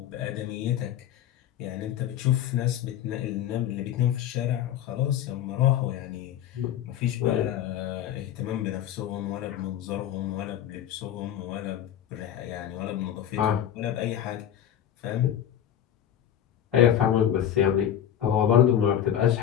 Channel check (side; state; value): right; quieter; 10.4 dB